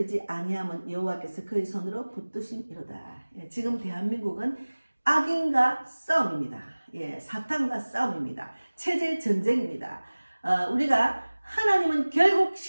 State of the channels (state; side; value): inverted; both; correlation -1.00